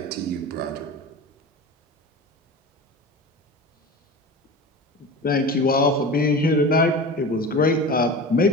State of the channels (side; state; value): both; normal; correlation 0.32